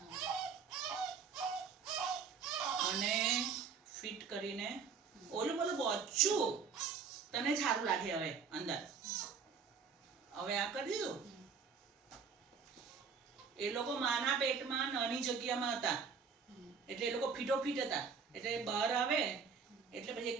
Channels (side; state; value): left; quieter; 5.8 dB